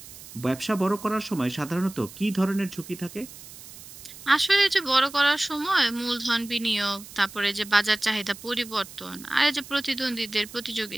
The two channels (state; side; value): noise; right; hiss, 16 dB below the sound